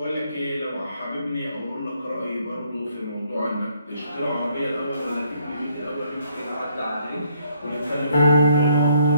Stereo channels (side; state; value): both; inverted; correlation -0.68